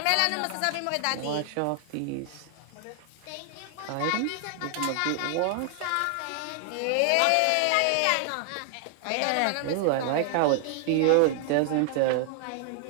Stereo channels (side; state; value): both; different; correlation 0.00